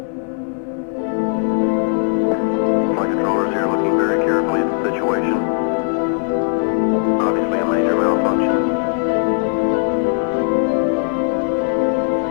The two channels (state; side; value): silent; right; digital silence